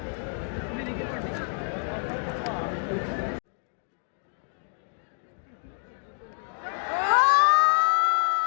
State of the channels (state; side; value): silent; right; 60 dB below the other